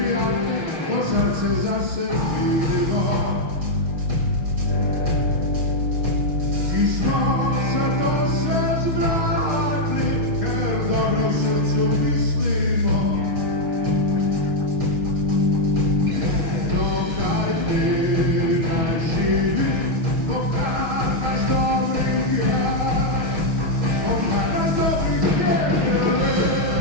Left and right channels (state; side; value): late; left; 6.4 ms